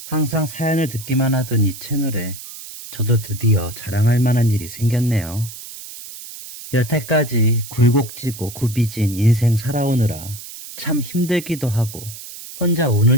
항상 사연을 듣기만 하던 이 채널에 저도 드디어 자랑할 만한 일이 생겼네요. 여태까지 굴곡지고 굽이진 인생 살아오느라 참 힘들기도 하고 혼자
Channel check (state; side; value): noise; right; hiss, 13 dB below the sound